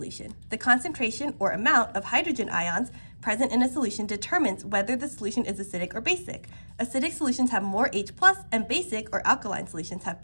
The concentration or amount of hydrogen ions present in a solution determines whether the solution is acidic or basic. Acidic solutions have more H+, and basic or alkaline solutions have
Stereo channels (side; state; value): both; inverted; correlation -1.00